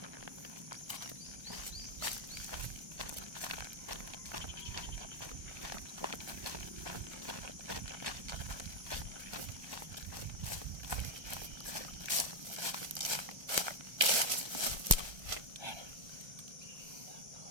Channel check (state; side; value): late; left; 1.3 ms